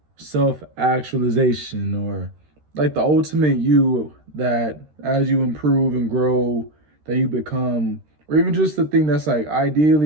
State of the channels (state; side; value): late; left; 13 ms